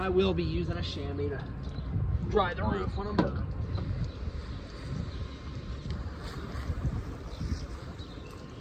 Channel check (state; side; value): identical; both; correlation 1.00